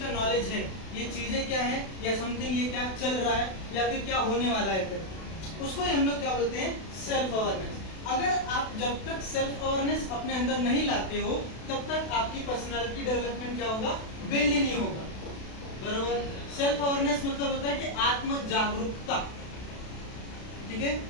का नॉलेज है, ये चीजें क्या है या समथिंग, ये क्या चल रहा है या फिर क्या होने वाला है, फिर उसको ही हम लोग क्या बोलते हैं, सेल्फ अवेयरनेस। अगर आप जब तक सेल्फ अवेयरनेस अपने अंदर नहीं लाते हो, तब तक आपकी पर्सनालिटी डेवलपमेंट क्या होगा, बिल्ड ही नहीं होगा, बरोबर। सेल्फ अवेयरनेस मतलब होता है कि आत्म जागरूकता, ठीक है।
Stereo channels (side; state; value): right; late; 32 ms